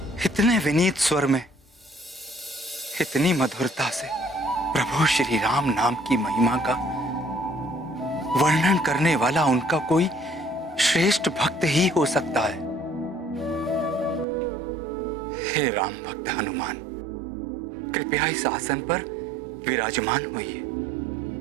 इतने विनीत स्वर में, इतनी मधुरता से प्रभु श्री राम नाम की महिमा का वर्णन करने वाला उनका कोई श्रेष्ठ भक्त ही हो सकता है। हे राम भक्त हनुमान, कृपया इस आसन पर विराजमान होइए।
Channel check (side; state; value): left; drops out; at 14.2 s